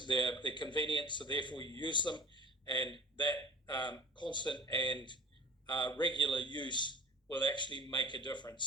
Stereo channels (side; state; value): both; normal; correlation 0.40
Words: they're convenient, so therefore you use them, and that constant and regular use will actually make a difference.